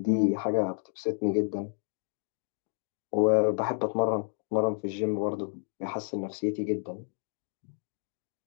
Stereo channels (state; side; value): silent; right; 57 dB below the other